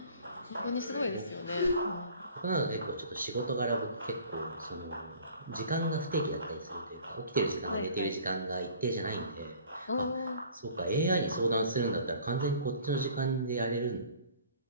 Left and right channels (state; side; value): inverted; both; correlation -0.50